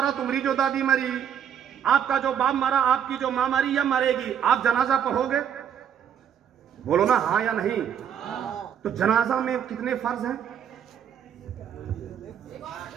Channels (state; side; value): quieter; left; 8.8 dB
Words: तुम्हारी जो दादी मरी, आपका जो बाप मारा, आपकी जो मां मरी या मरेगी, आप जनाजा पढ़ोगे? बोलो ना हाँ या नहीं। तो जनाजा में कितने फर्ज हैं?